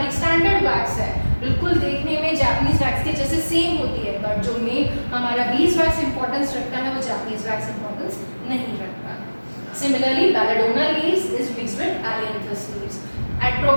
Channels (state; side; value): inverted; both; correlation -1.00